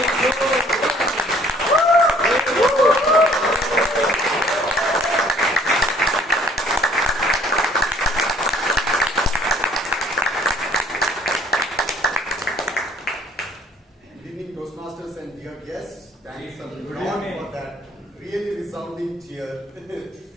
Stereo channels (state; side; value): normal; both; correlation 0.58